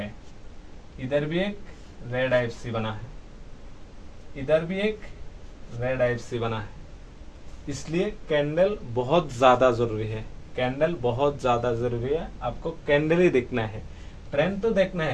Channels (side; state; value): both; identical; correlation 1.00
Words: इधर भी एक रेड आईएफसी बना है, इधर भी एक रेड आईएफसी बना है। इसलिए कैंडल बहुत ज्यादा जरूरी है, कैंडल बहुत ज्यादा जरूरी है। आपको कैंडल ही देखना है, ट्रेंड तो देखना